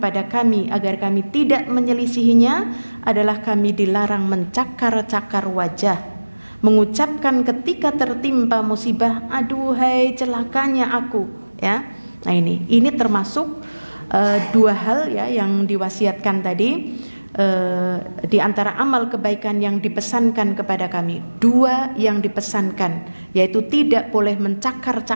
kami agar kami tidak menyelisihinya adalah kami dilarang mencakar-cakar wajah, mengucapkan ketika tertimpa musibah, aduhai celakanya aku, ya. Nah ini termasuk dua hal ya yang diwasiatkan tadi. Di antara amal kebaikan yang dipesankan kepada kami, dua yang dipesankan, yaitu tidak boleh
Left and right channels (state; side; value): inverted; both; correlation -1.00